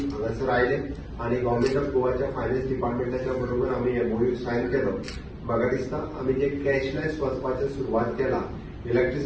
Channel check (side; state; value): both; identical; correlation 1.00